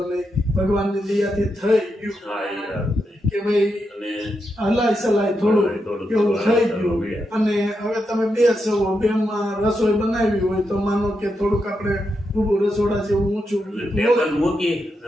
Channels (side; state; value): both; normal; correlation 0.85